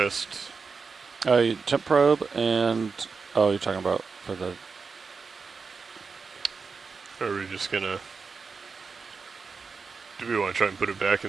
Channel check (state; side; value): quieter; left; 5.0 dB